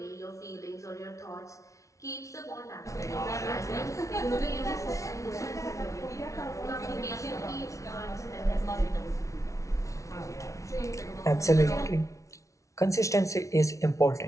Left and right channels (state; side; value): late; right; 0.15 ms